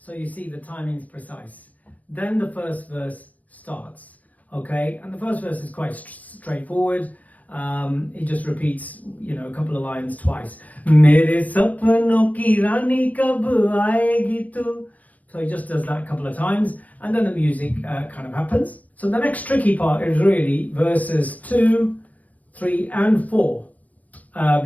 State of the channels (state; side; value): late; right; 0.072 ms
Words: you see the timing's precise. Then the first verse starts, okay? And the first verse is quite straightforward. He just repeats, a couple of lines twice. Mere sapano ki rani kab aayegi tu. So he just does that a couple of times, and then the music kind of happens. So the next tricky part is really verses 2, 3, and 4,